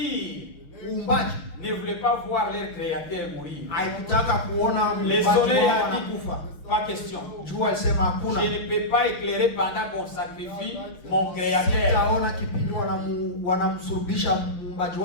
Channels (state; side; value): late; right; 5.8 ms